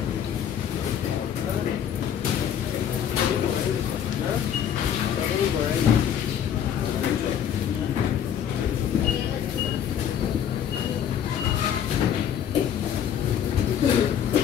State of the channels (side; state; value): right; quieter; 9.1 dB